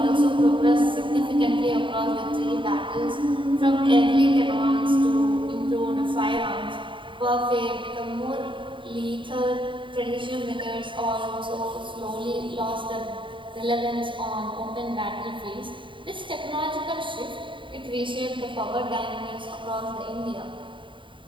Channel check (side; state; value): left; late; 0.24 ms